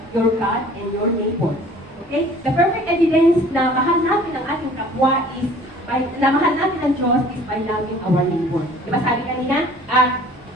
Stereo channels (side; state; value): both; normal; correlation 0.50